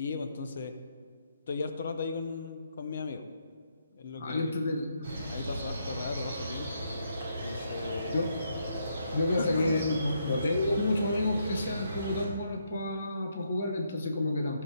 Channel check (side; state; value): both; inverted; correlation -0.76